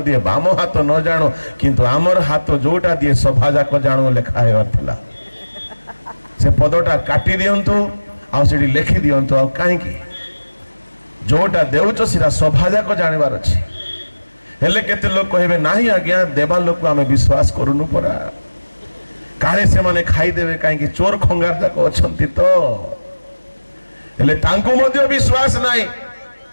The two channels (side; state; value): both; inverted; correlation -1.00